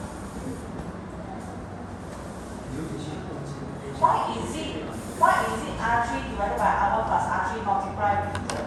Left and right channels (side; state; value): both; identical; correlation 1.00